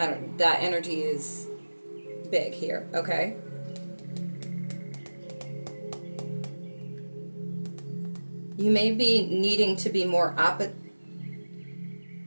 energy is big here, okay? You may be needing to be more opposite,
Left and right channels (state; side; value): inverted; both; correlation -1.00